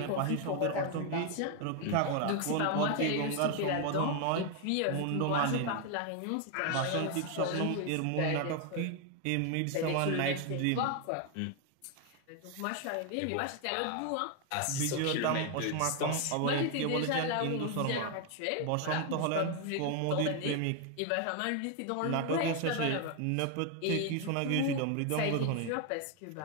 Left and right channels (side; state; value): both; different; correlation 0.01